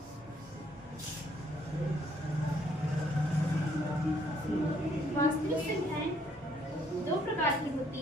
वास्तविक संख्याएं दो प्रकार की होती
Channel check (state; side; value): normal; both; correlation 0.66